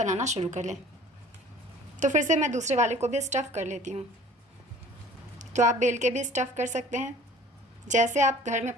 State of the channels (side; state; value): both; normal; correlation 0.48